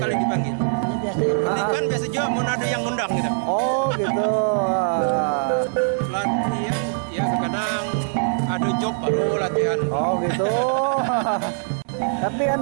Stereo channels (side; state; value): left; silent; digital silence